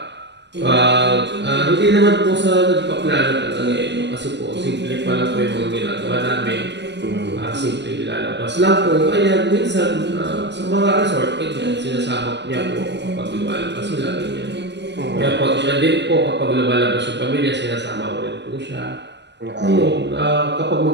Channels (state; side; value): late; left; 0.51 ms